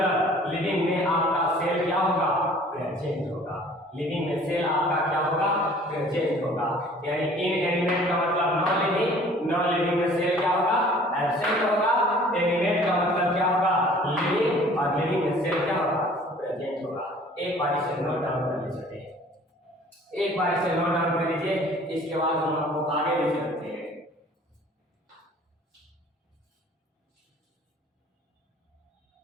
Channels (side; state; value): both; normal; correlation 0.51